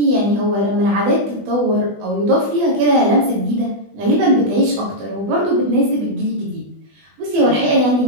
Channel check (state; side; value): late; left; 20 ms